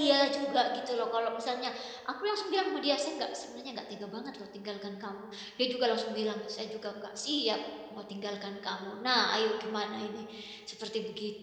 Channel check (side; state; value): both; identical; correlation 1.00